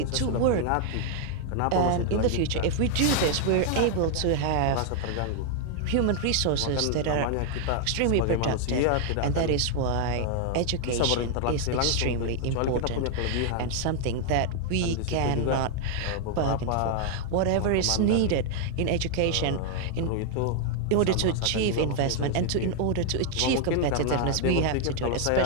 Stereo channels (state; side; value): different; both; correlation 0.00